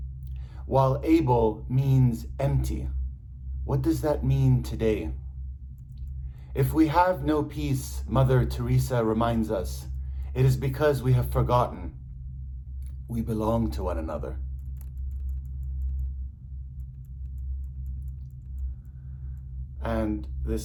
while Abel means empty. What does that mean today? If we have no peace, Mother Teresa reminds us, it is because we have forgotten we belong to one another. And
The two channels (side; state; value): both; identical; correlation 1.00